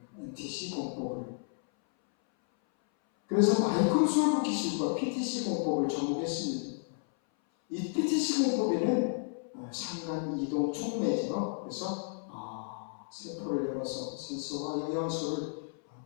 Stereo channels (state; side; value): silent; right; 56 dB below the other